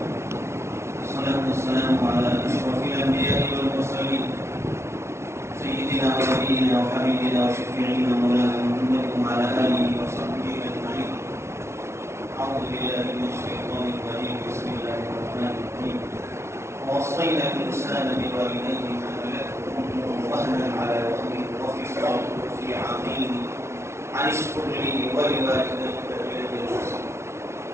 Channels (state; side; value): late; left; 0.13 ms